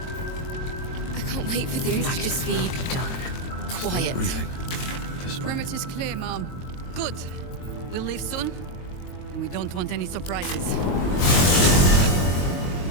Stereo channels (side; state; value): right; late; 22 ms